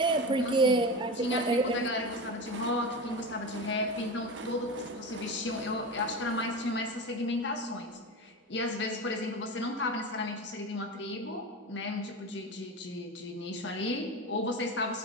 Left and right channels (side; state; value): both; normal; correlation 0.25